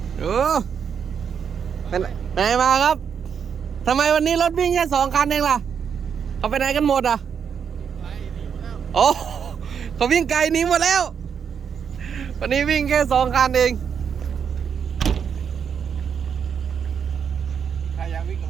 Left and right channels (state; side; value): quieter; left; 7.2 dB